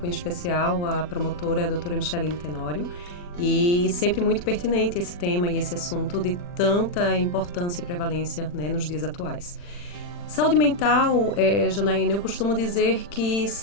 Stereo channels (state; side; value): late; right; 40 ms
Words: em especial a promotora a doutora Micheline Tenório, e sempre muito pertinente esse tema e esse assunto de tanta importância e prevalência, nos dias atuais. Saúde mental, Janaína, eu costumo dizer que